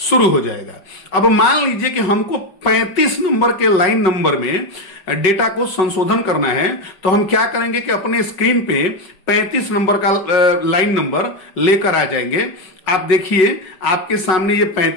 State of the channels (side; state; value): right; late; 5.4 ms